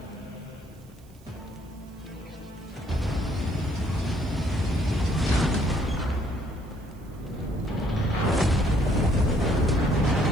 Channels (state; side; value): noise; right; hiss, 29 dB below the sound